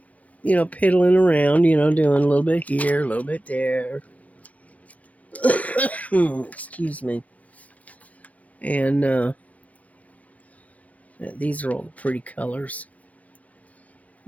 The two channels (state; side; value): late; right; 0.068 ms